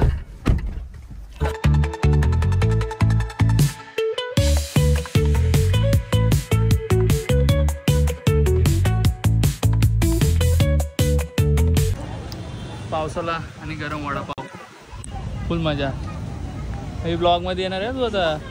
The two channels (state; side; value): identical; both; correlation 1.00